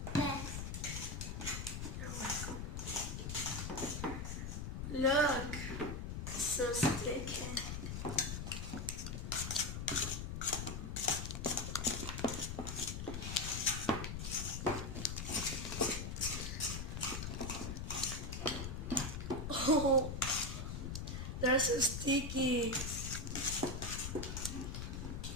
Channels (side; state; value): left; noise; rumble, 4 dB below the sound